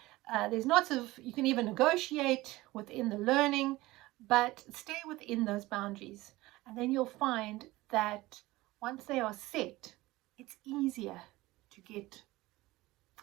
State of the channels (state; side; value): quieter; left; 19.1 dB